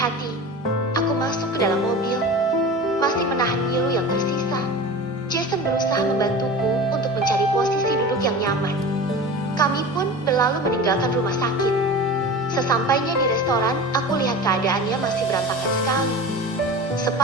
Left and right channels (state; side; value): normal; both; correlation 0.33